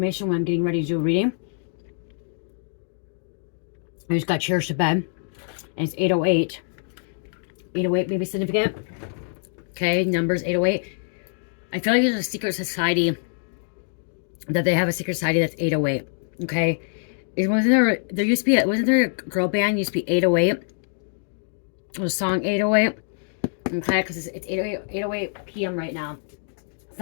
when I'm getting ready to do a reading. I just got cherished to bed. And it's 8:08. 8:08 may be significant. Okay, numbers 8:08. I feel like there's a secret society that they have a secret society that's 808. Okay, there used to be wasn't there a girl band used to be 808? It was a song 808. Okay, because it's 8:08 p.m. right now,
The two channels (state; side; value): silent; right; digital silence